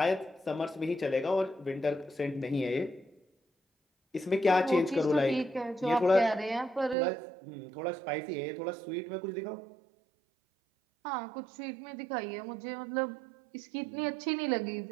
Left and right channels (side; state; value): left; drops out; at 7.0 s